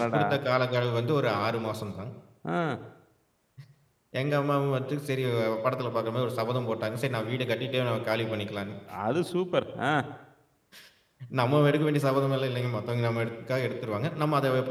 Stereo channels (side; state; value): both; identical; correlation 1.00